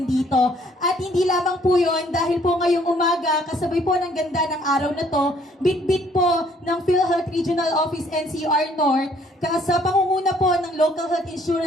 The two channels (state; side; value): normal; both; correlation 0.62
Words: dito. At hindi lamang po yon dahil po ngayong umaga, kasabay po ng ganda ng araw na to, bit-bit po ng PhilHealth Regional Office NCR North, sa pangunguna po ng Local Health